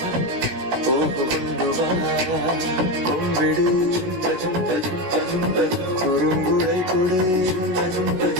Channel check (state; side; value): late; left; 16 ms